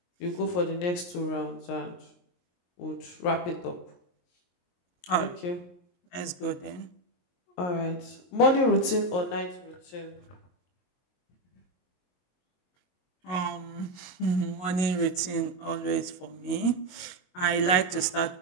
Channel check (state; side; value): late; right; 22 ms